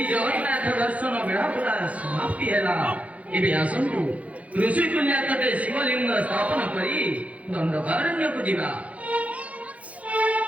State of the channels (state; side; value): late; left; 0.067 ms